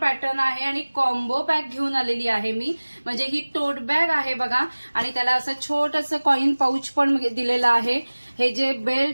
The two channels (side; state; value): both; inverted; correlation -1.00